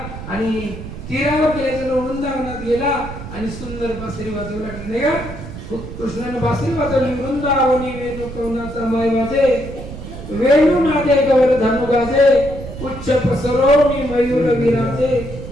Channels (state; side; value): noise; right; rumble, 11 dB below the sound